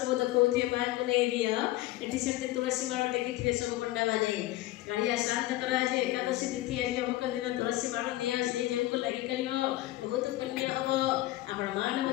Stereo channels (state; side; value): quieter; right; 16.8 dB